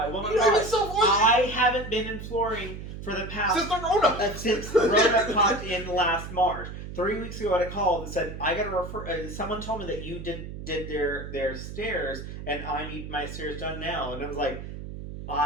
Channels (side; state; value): right; noise; hum, 9 dB below the sound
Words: will not lie. I haven't been in flooring for the past... Since the Rona popped in last March. 3 weeks ago, I had a call that said, I got to refer... someone told me that you did their stairs, and I need my stairs done now. And I was like,